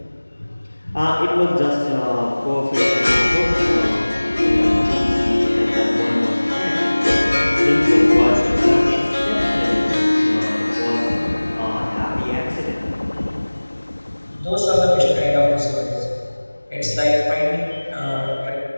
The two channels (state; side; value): inverted; both; correlation -1.00